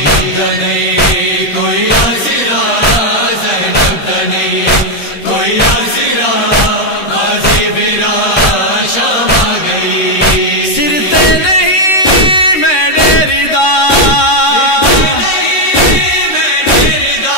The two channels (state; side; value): late; right; 13 ms